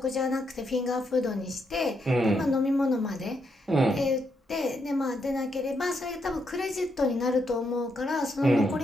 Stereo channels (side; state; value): both; normal; correlation 0.79